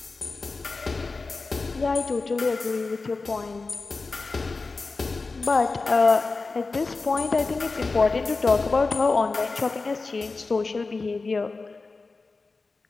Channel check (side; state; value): right; quieter; 3.9 dB